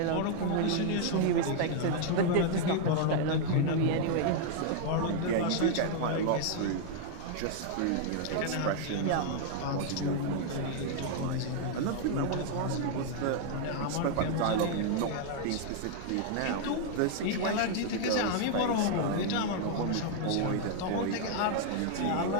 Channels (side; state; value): both; different; correlation 0.00